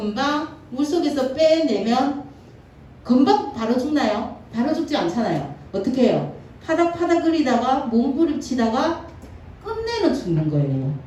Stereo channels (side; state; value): both; identical; correlation 1.00